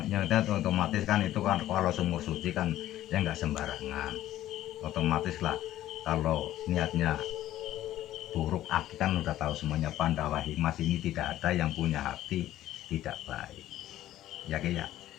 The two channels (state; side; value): quieter; right; 13.6 dB